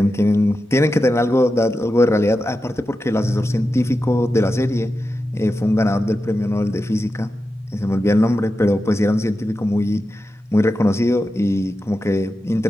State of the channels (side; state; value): both; normal; correlation 0.91